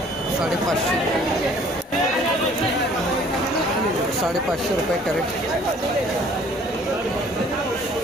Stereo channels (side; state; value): both; normal; correlation 0.55